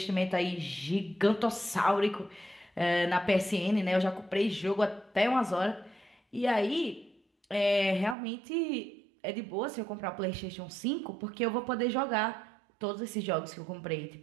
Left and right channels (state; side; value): drops out; left; at 8.2 s